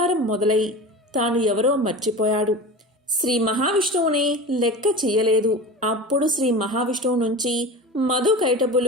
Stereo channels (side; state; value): both; normal; correlation 0.32